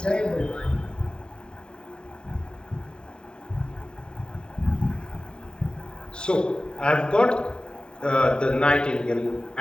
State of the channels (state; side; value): late; right; 0.049 ms